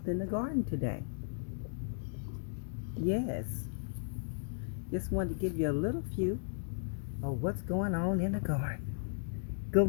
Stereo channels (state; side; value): silent; right; digital silence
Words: in the garden today. Yes, just wanted to give you a little view of what's going on in the garden. Good